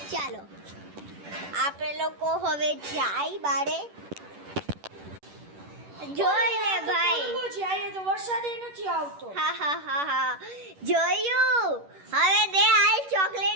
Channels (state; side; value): late; left; 10 ms